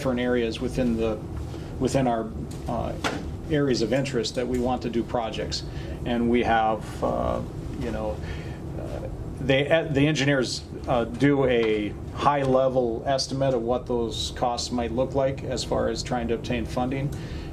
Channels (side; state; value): both; identical; correlation 1.00